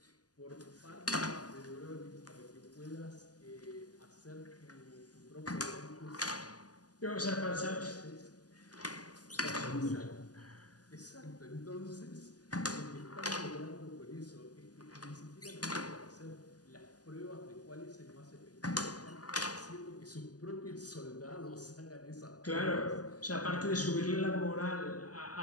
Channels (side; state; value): right; late; 0.68 ms